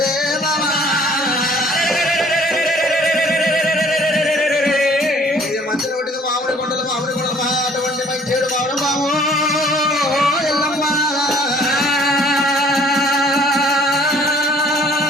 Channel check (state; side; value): normal; both; correlation 0.56